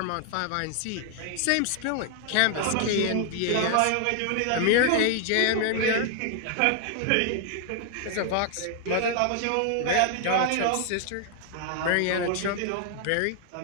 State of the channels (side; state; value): both; different; correlation 0.00